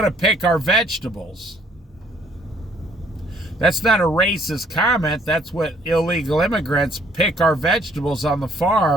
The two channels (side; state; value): both; normal; correlation 0.63